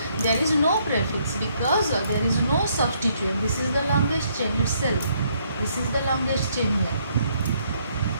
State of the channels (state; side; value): inverted; both; correlation -0.69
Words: there is no prefix because there is no substituent. This is the longest chain itself. This is the longest chain here.